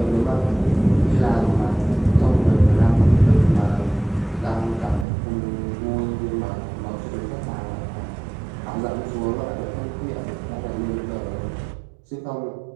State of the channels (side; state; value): left; drops out; at 5.1 s